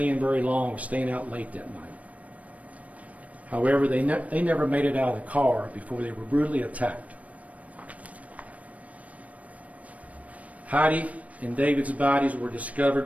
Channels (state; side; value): late; left; 0.068 ms